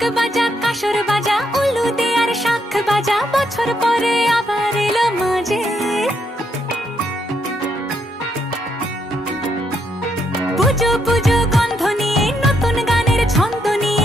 বাজা কাসর বাজা উলু দে আর শাখ বাজা বছর পরে আবার এলো মাঝে। পুজো পুজো গন্ধ নিয়ে নতুন গানের ছন্দ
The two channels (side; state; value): both; normal; correlation 0.76